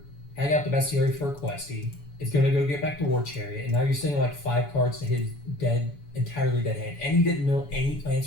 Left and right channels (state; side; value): late; right; 7.0 ms